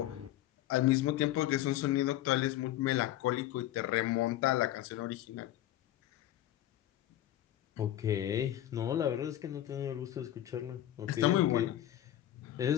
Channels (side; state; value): right; quieter; 13.3 dB